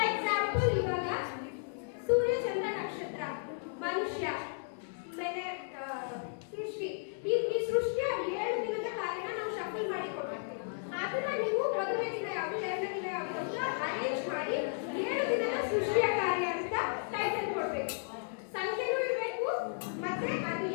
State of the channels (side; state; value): right; silent; digital silence